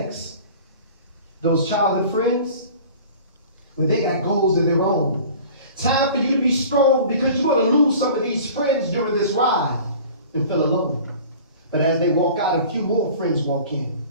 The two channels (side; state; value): both; inverted; correlation -0.43